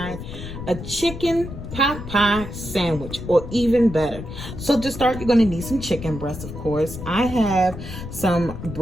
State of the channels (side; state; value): left; noise; rumble, 10 dB below the sound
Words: a chicken pot pie sandwich, or even better. So to start, you're going to need some chicken breast, of course. I have some